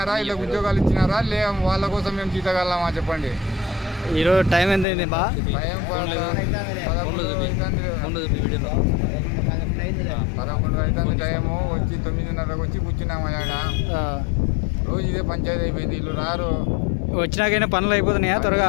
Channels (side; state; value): right; drops out; at 4.9 s